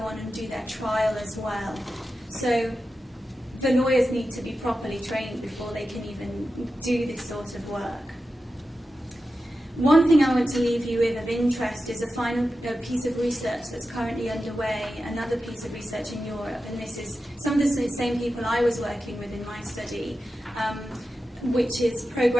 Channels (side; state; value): both; normal; correlation 0.92